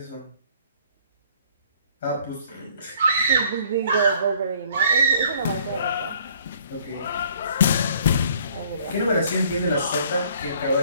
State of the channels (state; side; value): inverted; both; correlation -0.58